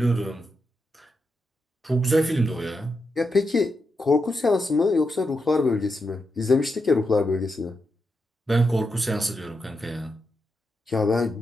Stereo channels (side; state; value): both; normal; correlation 0.85